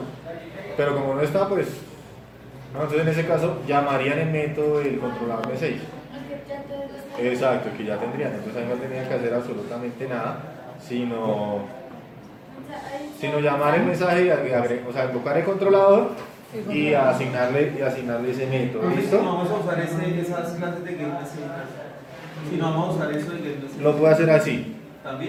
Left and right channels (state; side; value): identical; both; correlation 1.00